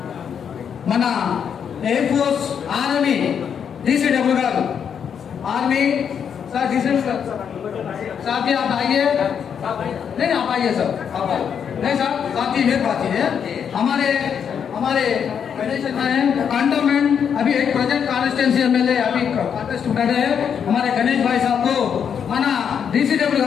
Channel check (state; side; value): quieter; right; 7.6 dB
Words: మన ఎయిర్ ఫోర్స్ ఆర్మీ DCW गारू आर्मी सर DCW साहब जी आप आइए नहीं आप आइए सर आप आइए नहीं सर साहब जी मेरी बात है हमारे कंटोनमेंट अभी एक प्रोजेक्ट कॉन्स्टिट्यूंसी MLA अभी कॉन्टेस्ट कर रहे हैं हमारे गणेश भाई साहब को మన DCW